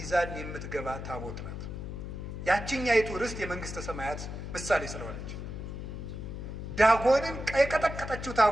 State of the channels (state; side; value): noise; left; hum, 7 dB below the sound